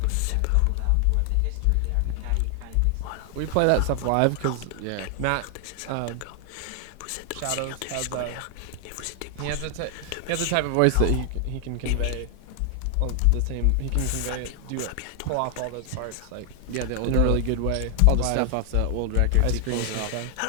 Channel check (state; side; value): different; both; correlation 0.00